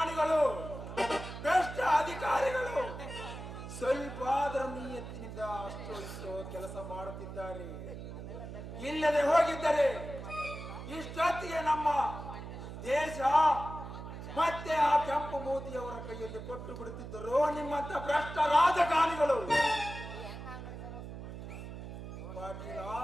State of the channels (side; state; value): right; noise; hum, 10 dB below the sound